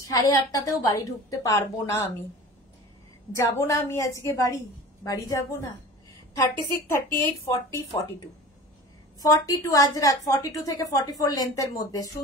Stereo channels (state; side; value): normal; both; correlation 0.38